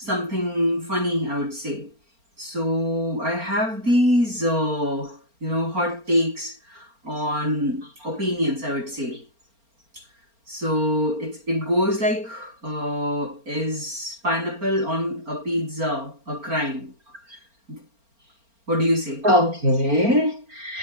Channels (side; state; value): left; late; 4.4 ms